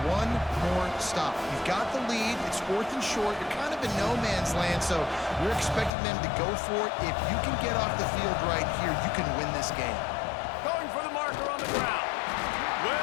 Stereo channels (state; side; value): drops out; right; at 5.9 s